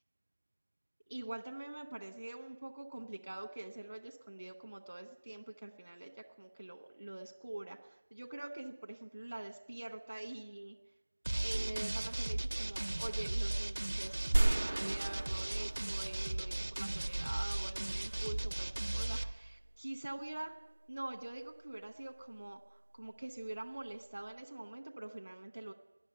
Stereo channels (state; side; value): inverted; both; correlation -1.00